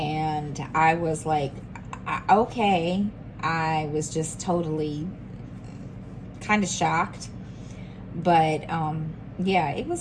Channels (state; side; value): identical; both; correlation 1.00